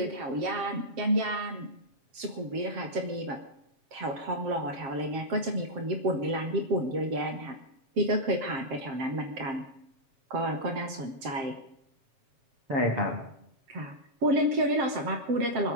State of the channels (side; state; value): left; late; 7.5 ms